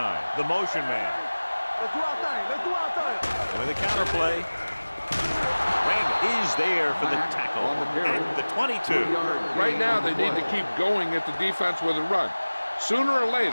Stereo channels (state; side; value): inverted; both; correlation -1.00